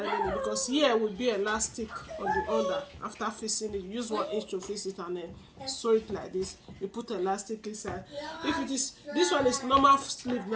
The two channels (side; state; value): both; identical; correlation 1.00